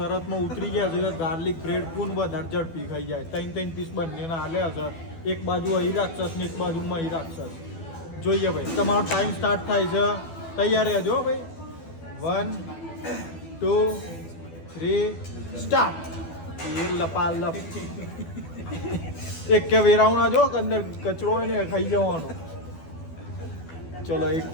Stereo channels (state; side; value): late; right; 12 ms